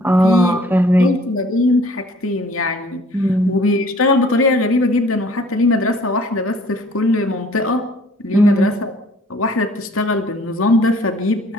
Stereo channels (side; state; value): both; normal; correlation 0.55